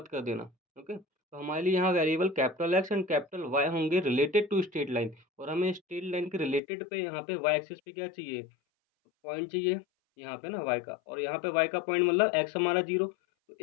कर देना। ओके, तो हमारे लिए यहाँ variable capital x and capital y होंगे रिलेटेड टू स्ट्रेट लाइन, और हमें स्ट्रेट लाइन के रिलेटेड पे यहाँ पे वाई एक्सिस पे क्या चाहिए, पॉइंट चाहिए यहाँ पे ना वाई का, और यहाँ पे वाई का पॉइंट मतलब एक्स हमारा 0। तो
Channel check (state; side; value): drops out; right; at 6.6 s